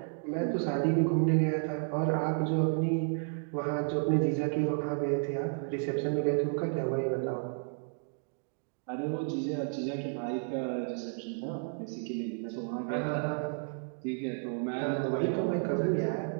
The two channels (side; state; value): left; silent; 56 dB below the other